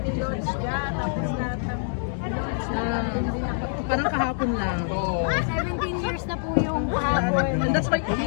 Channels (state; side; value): silent; right; digital silence